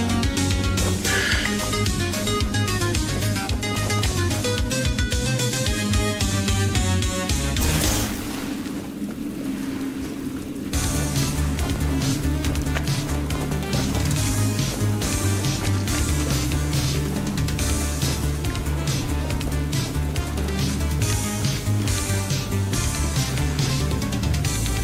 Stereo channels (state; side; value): identical; both; correlation 1.00